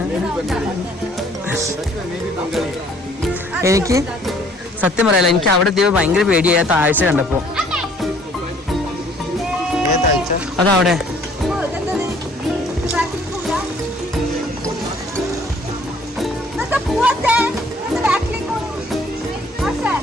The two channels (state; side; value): normal; both; correlation 0.59